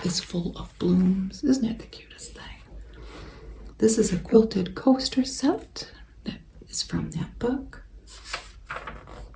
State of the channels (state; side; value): identical; both; correlation 1.00